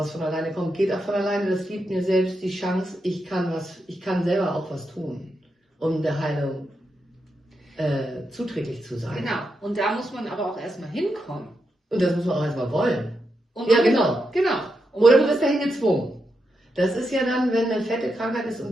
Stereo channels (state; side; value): normal; both; correlation 0.85